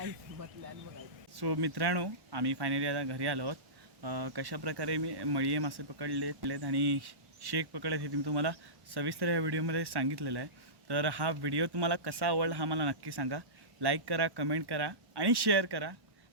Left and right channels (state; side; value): late; left; 1.1 ms